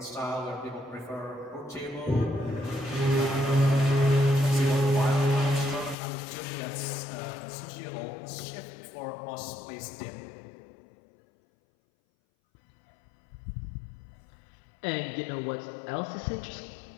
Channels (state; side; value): drops out; right; at 6.0 s